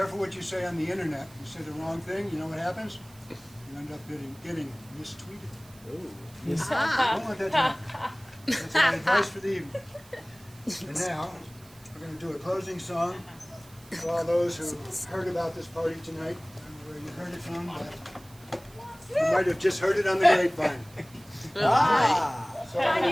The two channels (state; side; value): noise; right; hiss, 24 dB below the sound